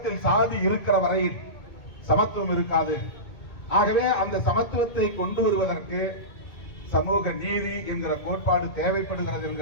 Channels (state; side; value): late; right; 2.2 ms